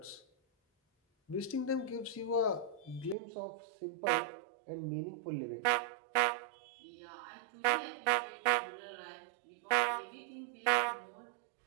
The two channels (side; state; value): left; drops out; at 3.2 s